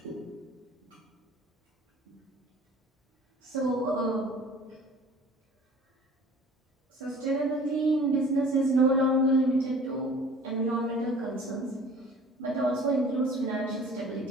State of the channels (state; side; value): normal; both; correlation 0.47